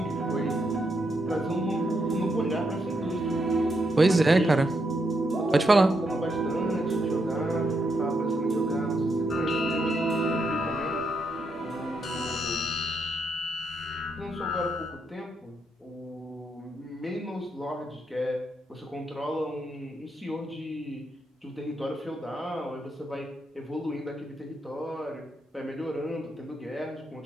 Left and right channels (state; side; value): normal; both; correlation 0.80